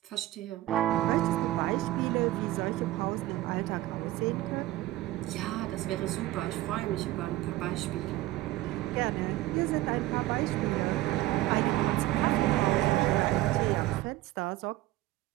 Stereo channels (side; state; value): left; quieter; 16.4 dB